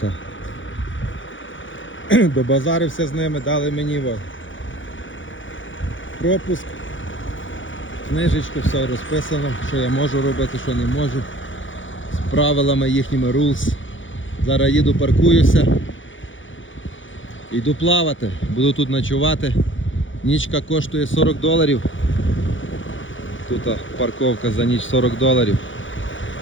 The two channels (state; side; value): late; right; 0.56 ms